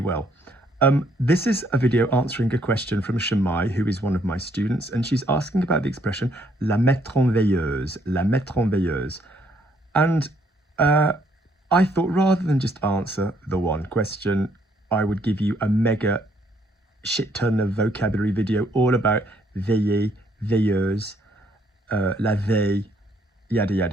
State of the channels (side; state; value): both; normal; correlation 0.68